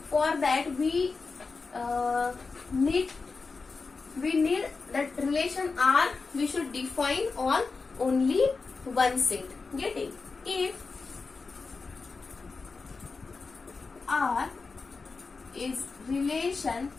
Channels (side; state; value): right; quieter; 4.3 dB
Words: for that we need that relation R we should define on only one set. Getting? If R is relation